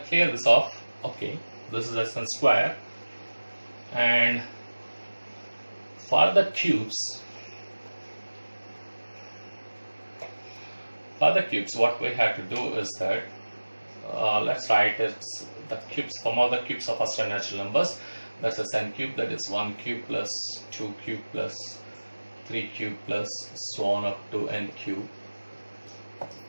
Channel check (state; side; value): inverted; both; correlation -1.00